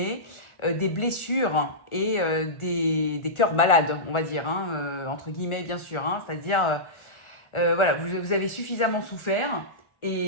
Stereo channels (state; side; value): late; right; 1.4 ms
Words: des blessures et des cœurs malades, on va dire, hein, entre guillemets, bien sûr. Hein, c'est-à-dire, voilà, vous avez suffisamment souffert